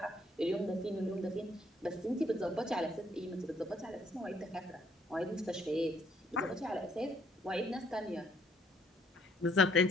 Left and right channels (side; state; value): both; normal; correlation 0.67